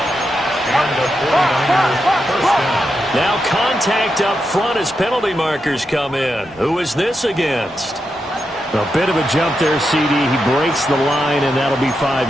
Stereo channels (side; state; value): both; normal; correlation 0.86